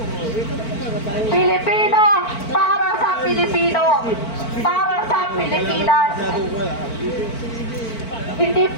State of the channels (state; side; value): late; right; 4.5 ms